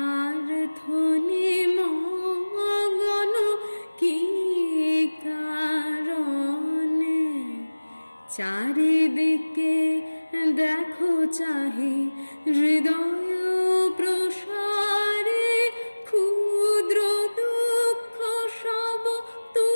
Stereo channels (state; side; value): inverted; both; correlation -1.00